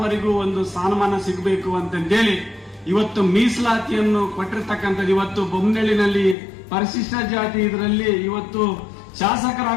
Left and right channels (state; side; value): drops out; right; at 6.4 s